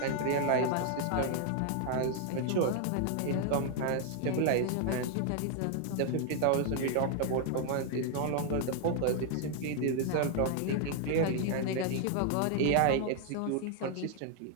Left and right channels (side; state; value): both; different; correlation 0.00